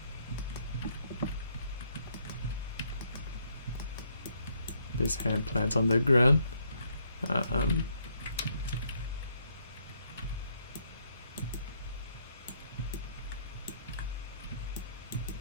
This hand plants on the ground.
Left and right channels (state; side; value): inverted; both; correlation -0.71